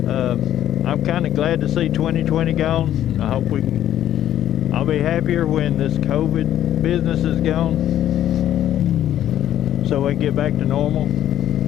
I'm kind of glad to see 2020 gone. I hope I'll be happier when this COVID business is gone, so we can get back to normal.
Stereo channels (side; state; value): right; quieter; 11.7 dB